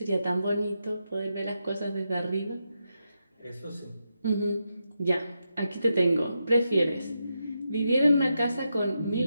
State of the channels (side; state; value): both; inverted; correlation -0.86